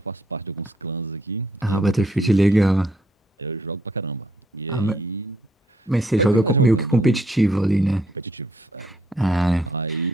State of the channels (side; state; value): both; normal; correlation 0.70